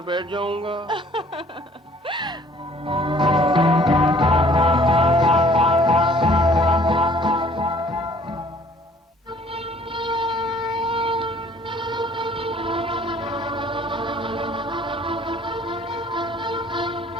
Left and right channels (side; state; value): both; normal; correlation 0.56